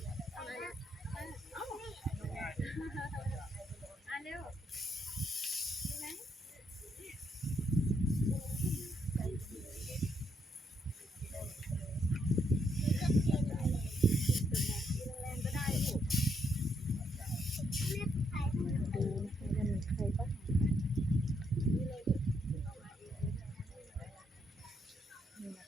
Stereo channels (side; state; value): both; normal; correlation 0.75